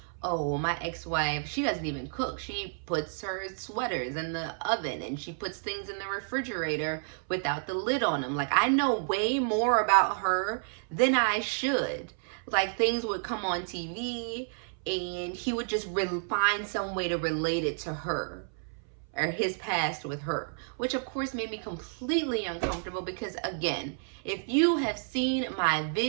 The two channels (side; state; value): left; silent; 57 dB below the other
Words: Oh, my ex-wife, she doesn't even cook. She puts her sweaters in the oven and she puts things in the refrigerator without the lid on them. Like, I know way more about her than I should. Like, things would come on TV and he would just find some way to relate it to her or his past with her, which of course made me completely uncomfortable because, again, if you have seen my